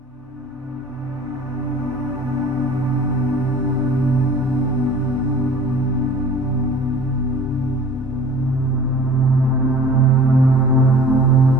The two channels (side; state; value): both; normal; correlation 0.45